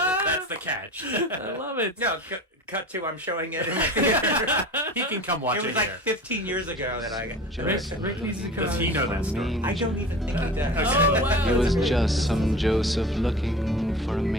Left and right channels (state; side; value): normal; both; correlation 0.36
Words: That's the catch. I love it. No, cut to I'm showing it. He can come watch It it, was like here. 15 years ago that I got. Rick needs to come. Does he know that story? I don't even think he does. Oh, wow. It was just some Joseph looking for a